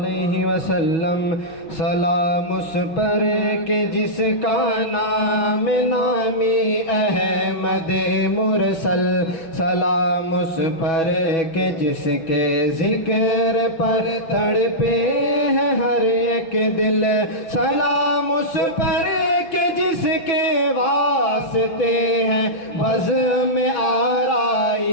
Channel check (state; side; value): late; right; 6.2 ms